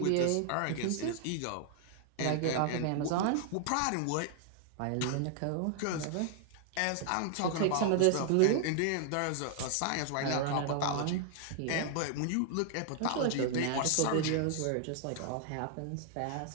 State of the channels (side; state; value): both; different; correlation 0.00